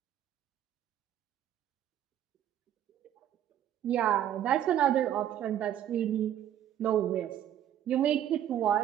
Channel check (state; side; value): quieter; left; 10.8 dB